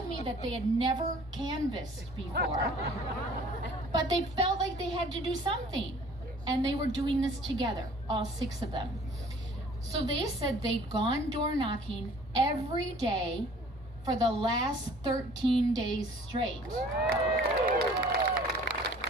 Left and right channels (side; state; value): both; normal; correlation 0.52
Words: me that they had never canvassed before, but they felt like they had to do something. And they were doing this together, all 6 of them. So they said they'd gone door knocking every day for the last 13 days straight.